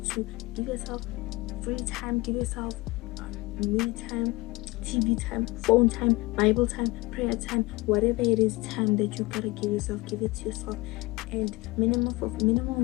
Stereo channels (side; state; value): right; quieter; 22.2 dB